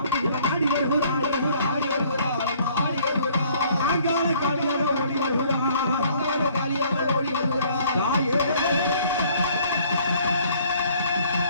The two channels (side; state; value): both; inverted; correlation -0.59